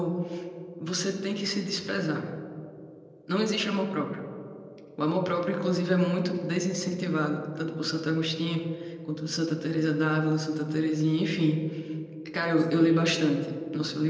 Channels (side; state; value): both; identical; correlation 1.00